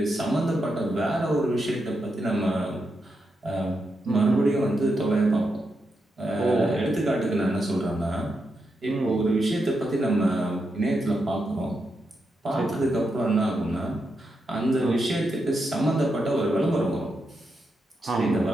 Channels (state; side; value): normal; both; correlation 0.84